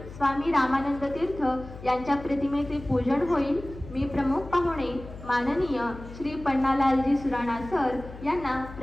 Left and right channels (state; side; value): noise; left; hum, 14 dB below the sound